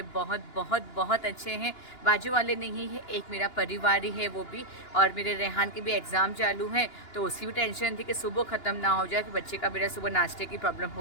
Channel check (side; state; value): right; late; 2.9 ms